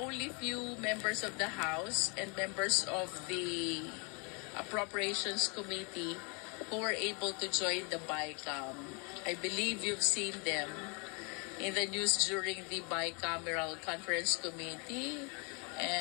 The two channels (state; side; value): quieter; right; 33.7 dB